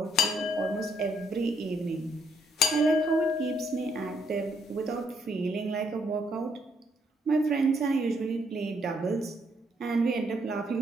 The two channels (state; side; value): normal; both; correlation 0.71